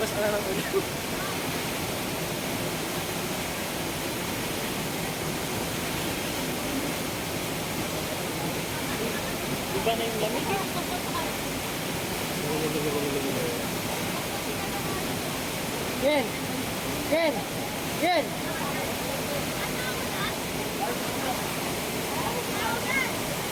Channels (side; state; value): both; identical; correlation 1.00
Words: ka na ng ulo. Iba na yung lamig. Yen! Yen! Yen!